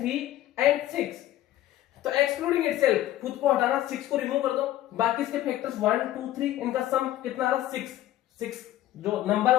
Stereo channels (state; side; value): quieter; right; 14.0 dB